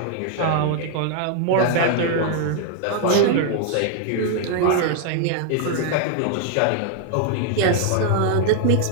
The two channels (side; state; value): both; different; correlation 0.00